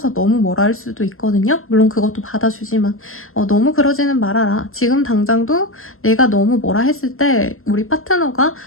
너무 뭐라 할 수도 있거든요. 물론 그것도 받아주지만 너무 그러지는 말아라. 지금 당장도 내가 너무 뭐라 했을 때 우리 파트너가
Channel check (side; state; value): right; late; 0.62 ms